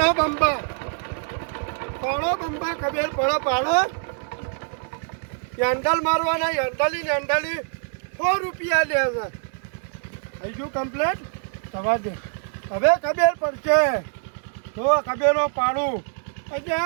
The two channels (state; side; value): silent; left; digital silence